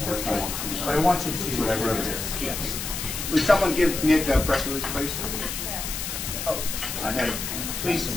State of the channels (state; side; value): noise; left; hiss, 5 dB below the sound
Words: But I want you to see what I wrote. Yes. Would someone give Nick a press release, please? Oh, I had it. Please